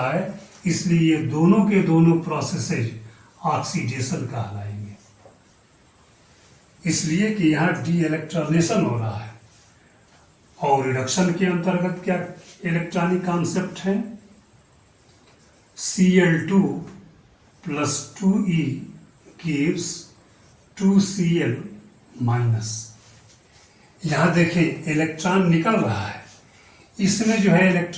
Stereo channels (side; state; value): both; identical; correlation 1.00